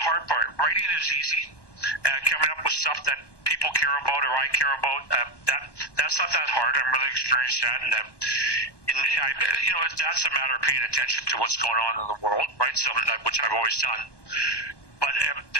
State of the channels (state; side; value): late; right; 1.1 ms